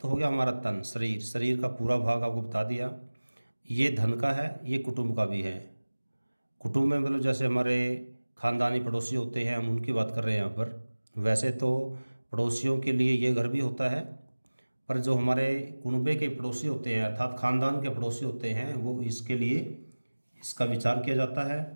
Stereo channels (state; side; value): inverted; both; correlation -1.00